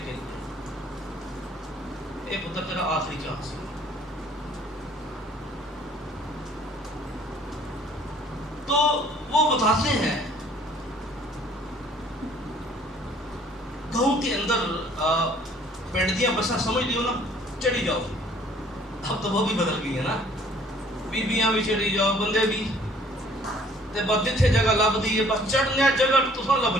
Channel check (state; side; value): normal; both; correlation 0.57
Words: کے لیے. ایک ہوتا تیرا آخری چانس. تو وہ بتاتے ہیں گاؤں کے اندر پنڈیاں بساں سمجھ لیو نا، چڑھی جاؤ. اب تو وہ بھی بدل گئی ہے نا. بیبیاں بھی چڑھی جاؤ، بندے بھی. تے بس جتھے جگہ لب دی ہے بس چڑھنے جگہ تساں